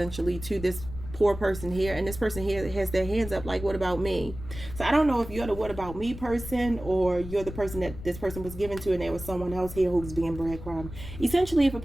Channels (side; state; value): left; noise; rumble, 11 dB below the sound